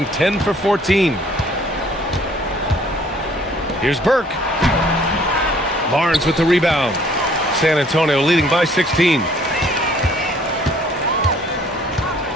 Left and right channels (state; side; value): normal; both; correlation 0.58